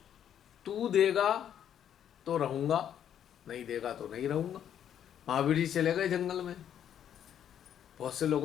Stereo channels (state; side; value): quieter; right; 9.6 dB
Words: तू देगा तो रहूंगा, नहीं देगा तो नहीं रहूंगा। महावीर जी चले गए जंगल में, बहुत से